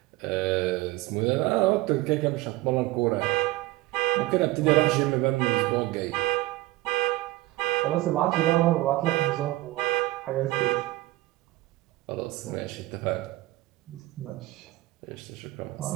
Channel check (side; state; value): left; quieter; 18.7 dB